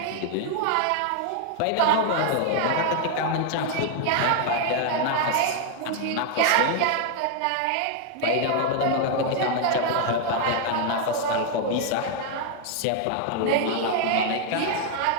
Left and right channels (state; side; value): different; both; correlation 0.00